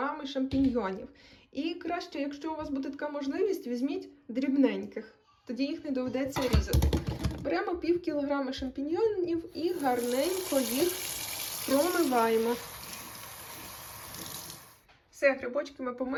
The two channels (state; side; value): identical; both; correlation 1.00